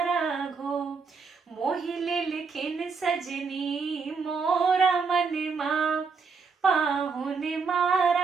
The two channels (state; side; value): quieter; left; 5.1 dB